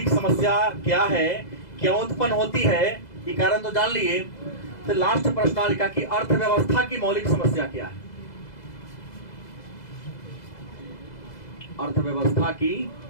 समस्या क्या है, क्यों उत्पन्न होती है, ये कारण तो जान लिए। तो लास्ट प्रश्न लिखा कि अर्थव्यवस्था की मौलिक समस्या क्या है। अर्थव्यवस्था की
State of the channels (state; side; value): late; right; 2.0 ms